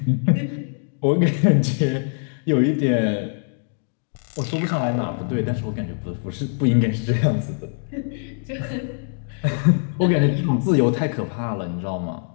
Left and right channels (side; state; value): right; silent; digital silence